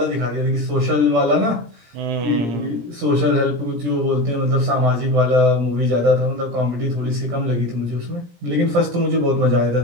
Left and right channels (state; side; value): late; left; 17 ms